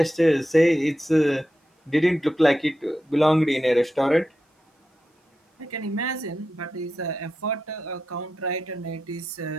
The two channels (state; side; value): normal; both; correlation 0.89